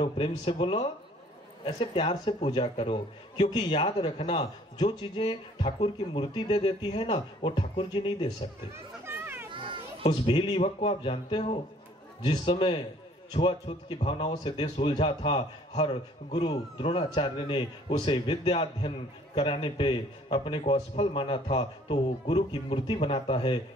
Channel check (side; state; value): both; normal; correlation 0.57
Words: प्रेम से बोलो। ऐसे प्यार से पूजा करो, क्योंकि याद रखना जो चीजें ठाकुर की मूर्ति दे देती है ना वो ठाकुर जी नहीं दे सकते। उस भील युवक को आप जानते हो, जिस समय छुआछूत की भावनाओं से देश उलझा था, हर गुरु द्रोणाचार्य ने उसे विद्या अध्ययन कराने पे अपने को असफल माना था, तो वो गुरु की मूर्ति बनाता है